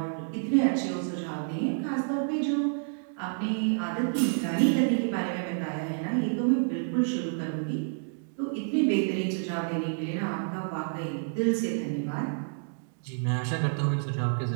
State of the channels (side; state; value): left; silent; digital silence